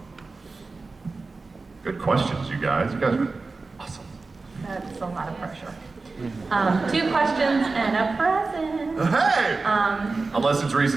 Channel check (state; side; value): quieter; left; 3.9 dB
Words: Good questions, you guys. You guys are awesome. That's a lot of pressure. Two questions and a present. Hey! Unless it's